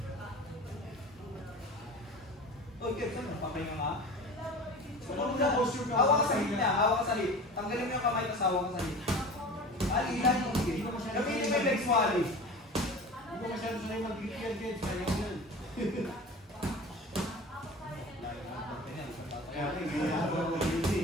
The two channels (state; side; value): normal; both; correlation 0.36